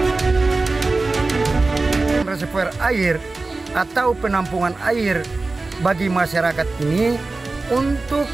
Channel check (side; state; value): left; quieter; 3.5 dB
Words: Reservoir air atau penampungan air bagi masyarakat ini untuk